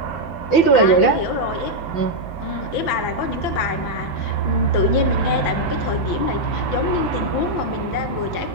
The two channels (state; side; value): late; right; 6.0 ms